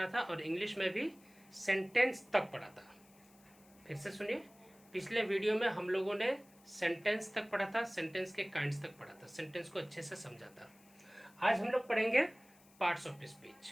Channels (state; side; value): noise; left; hiss, 27 dB below the sound